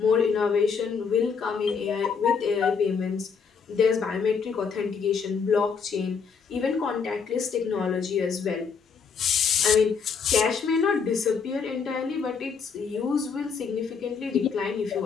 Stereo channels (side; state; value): right; quieter; 5.9 dB